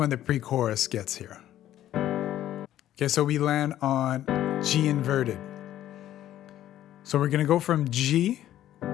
the pre-chorus gets here. Okay, so we land on G inverted. So we're gonna go from G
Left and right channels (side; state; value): right; quieter; 12.6 dB